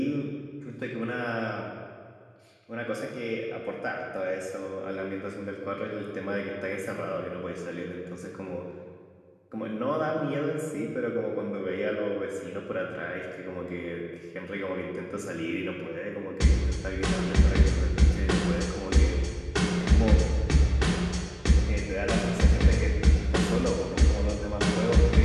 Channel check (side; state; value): both; identical; correlation 1.00